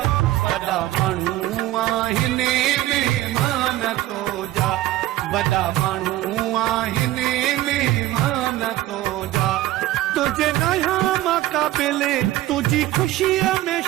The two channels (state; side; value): quieter; left; 15.6 dB